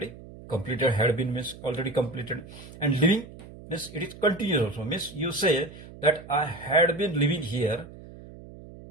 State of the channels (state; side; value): noise; right; hum, 17 dB below the sound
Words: completed, had been means already completed, and living means it is continuous also, means you say that I had been living here